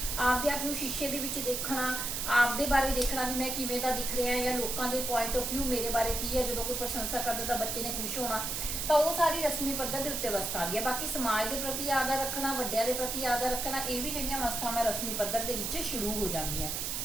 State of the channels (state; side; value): noise; right; hiss, 2 dB below the sound